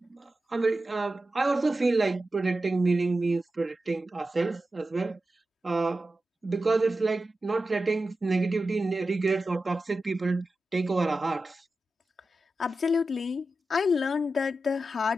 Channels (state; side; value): normal; both; correlation 0.92